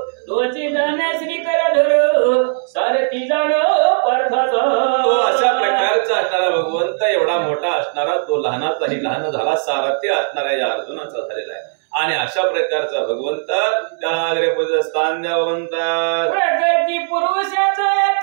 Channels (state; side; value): silent; left; 68 dB below the other